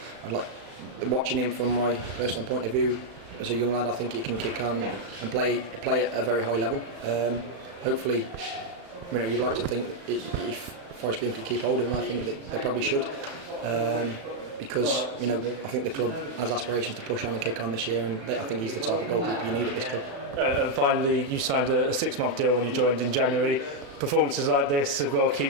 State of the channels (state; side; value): late; left; 36 ms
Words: I'd like watching him from my personal point of view. As a young lad, I think he can kick on and play at a very high level. Hopefully, you'd like to think that if Forest Green could keep hold of him, I think that they probably should. Because I think the club has aspirations to push on and kick on this year, and I think he's the type of goalkeeper you need at this club. And finally, you signed a 6-month deal when you joined in January. Performances like this have got to keep